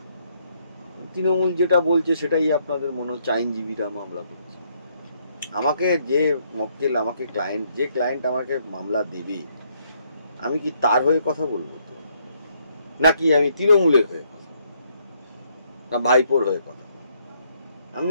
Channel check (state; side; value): inverted; both; correlation -0.71